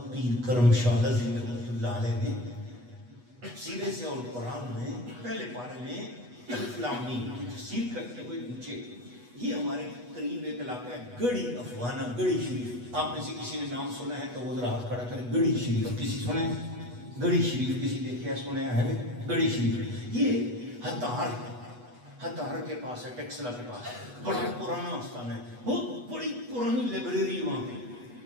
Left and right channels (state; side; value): late; left; 8.2 ms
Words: پیر کرم شاہ نظیم رحمۃ اللہ علیہ نے تفسیر ضیاء القرآن میں پہلے پارے میں الف لام میم کی تفسیر کرتے ہوئے نیچے, یہ ہمارے قریب ایک علاقہ ہے گڑھی افغانہ, گڑھی شریف. آپ میں سے کسی نے نام سنا ہے تو وہ ذرا ہاتھ کھڑا کرے. گڑھی شریف کسی سنے؟ گڑھی شریف کسی دیکھا سنے ہے؟ گڑھی شریف یہ ہتار کے پاس ہے, ٹیکسلا کے پاس ہے. بڑا پرانا آستان ہے, بہت بڑی پرانی لائبریری وہاں پہ.